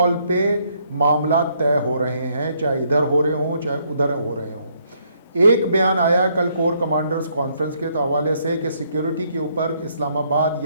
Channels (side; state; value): both; inverted; correlation -0.71